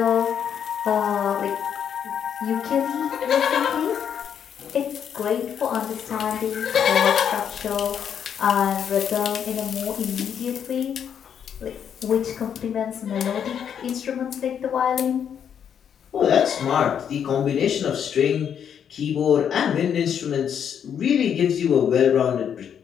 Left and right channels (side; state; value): right; quieter; 8.3 dB